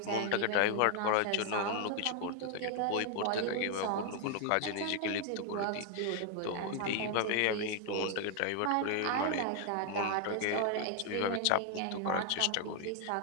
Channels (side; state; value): both; different; correlation 0.00